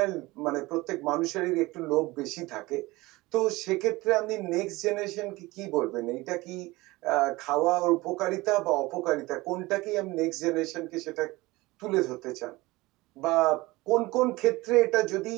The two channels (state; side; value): quieter; left; 21.0 dB